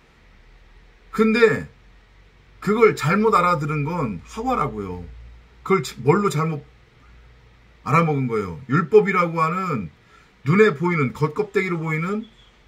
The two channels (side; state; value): both; identical; correlation 1.00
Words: 근데 그걸 잘못 알아들은 건 하와라고요. 그걸 뭘로 잘못 알아먹은 거예요. 율법이라고 하는 눈에 보이는 겉껍데기로 보이는